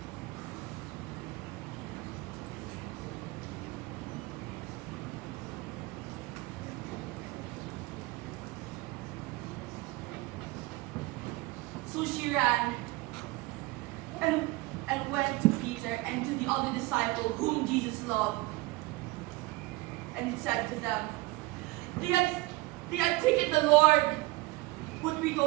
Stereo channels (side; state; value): left; quieter; 20.8 dB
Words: So she ran and went to Peter and to the other disciple whom Jesus loved, and said to them, they had taken the Lord, but we